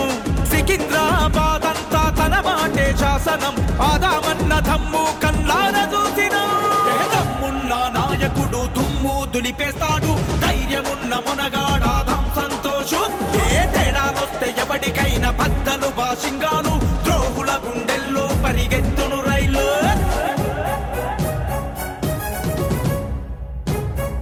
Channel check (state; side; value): identical; both; correlation 1.00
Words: సికింద్రాబాద్ అంతా తన మాటే శాసనం ఆదామన్న దమ్ము కల్లార చూసినం దమ్మున్న నాయకుడు దుమ్ము దులిపేస్తాడు ధైర్యమున్న మునగాడాదాం సంతోషు ఏ తేడాలొస్తే ఎవడికైనా బద్దలు బాసింగాలు ద్రోహుల గుండెల్లో పరిగెత్తును రైలు